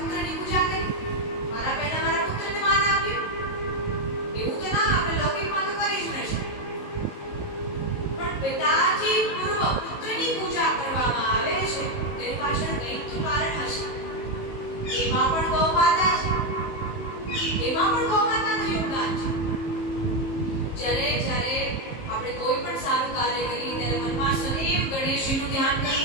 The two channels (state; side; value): late; right; 18 ms